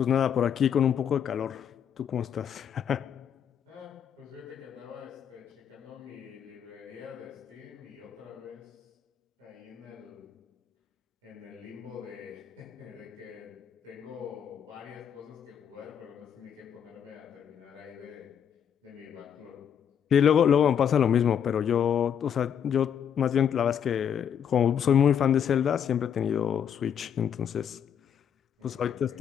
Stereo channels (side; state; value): right; quieter; 8.4 dB